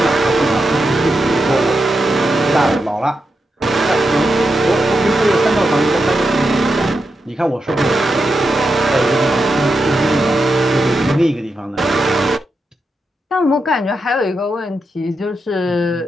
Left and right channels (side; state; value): both; normal; correlation 0.86